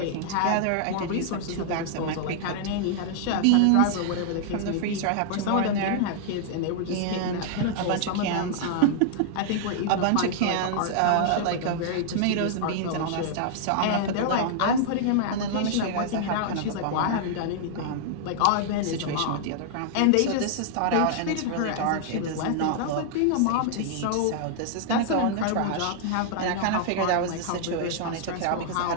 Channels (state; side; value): different; both; correlation -0.01